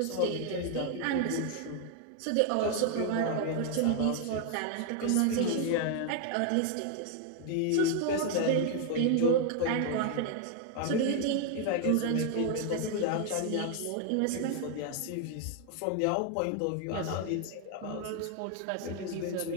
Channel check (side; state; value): both; different; correlation 0.00